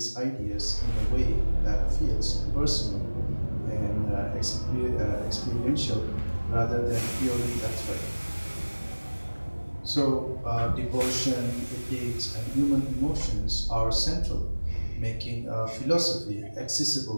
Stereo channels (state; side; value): inverted; both; correlation -1.00